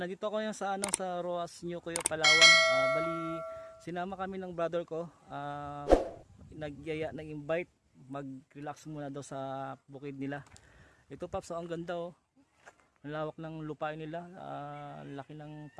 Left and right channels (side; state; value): both; identical; correlation 1.00